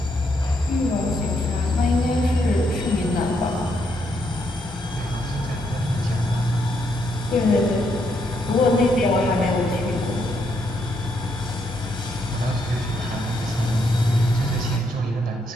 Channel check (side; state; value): both; normal; correlation 0.76